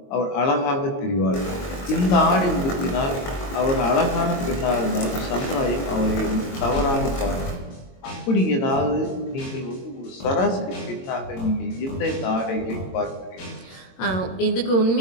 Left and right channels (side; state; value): right; late; 22 ms